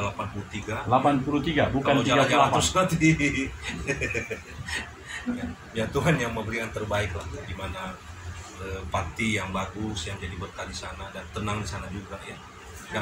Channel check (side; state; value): both; identical; correlation 1.00